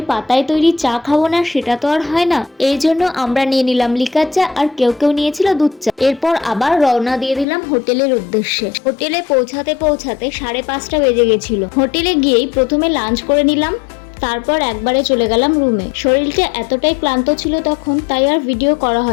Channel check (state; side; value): drops out; right; at 7.5 s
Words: পাতায় তৈরি চা খাবো না সেটা তো আর হয় না। এই জন্য আমরা নিয়ে নিলাম লিকার চা, আর কেউ কেউ নিয়েছিল দুধ চা। এরপর আবার রওনা দিয়ে দিলাম হোটেলের উদ্দেশ্যে। হোটেলে পৌঁছাতে পৌঁছাতে 5:30 বেজে গেছিল। হোটেলে গিয়েই প্রথমে লাঞ্চ করে নিলাম, তারপর একবারে চলে গেলাম রুমে। শরীরটা এতটাই ক্লান্ত ছিল তখন, তাই আর ভিডিও করা